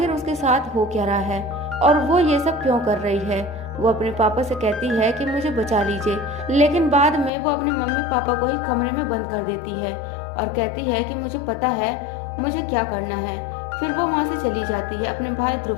उसके साथ हो क्या रहा है और वो ये सब क्यों कर रही है। वो अपने पापा से कहती है कि मुझे बचा लीजिए, लेकिन बाद में वो अपने मम्मी पापा को ही कमरे में बंद कर देती है और कहती है कि मुझे पता है मुझे क्या करना है। फिर वो वहाँ से चली जाती है अपने भाई ध्रुव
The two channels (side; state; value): right; drops out; at 7.3 s